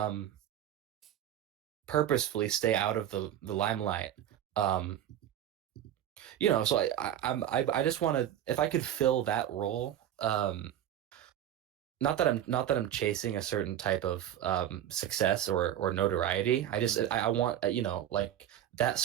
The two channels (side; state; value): left; quieter; 11.2 dB